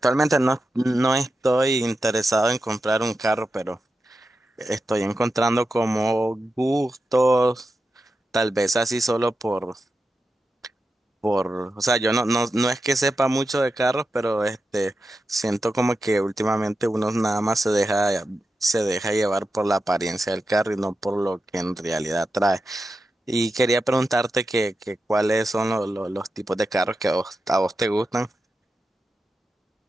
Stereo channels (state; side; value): normal; both; correlation 0.90